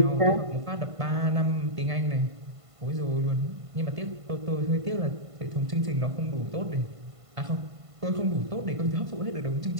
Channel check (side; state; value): left; late; 1.5 ms